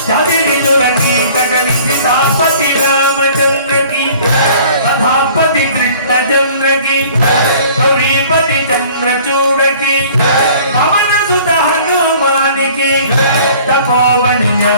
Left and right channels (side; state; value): both; inverted; correlation -0.50